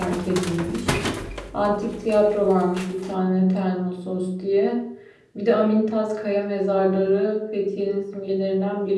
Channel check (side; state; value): both; identical; correlation 1.00